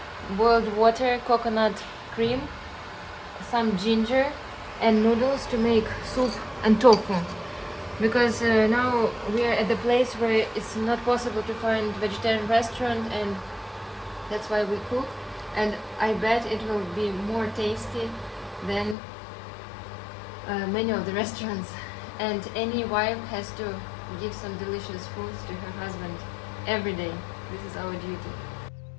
boiled water, coconut cream, some ginger and noodles to make soup and tofu. Because now we are at the place where it's not possible to find vegetarian restaurant, and that's why we cook. And I bet it will be more tasty than many of the restaurants. And any wife has to give some delicious foods to her husband every day. This is our duty.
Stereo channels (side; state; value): right; drops out; at 18.9 s